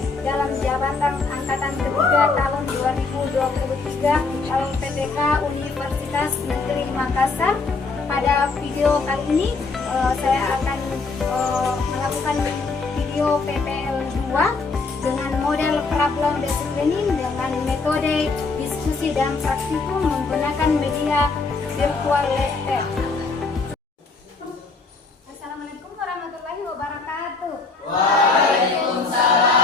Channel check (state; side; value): quieter; right; 4.1 dB